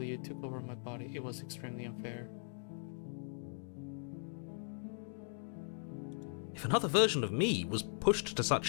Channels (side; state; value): right; silent; digital silence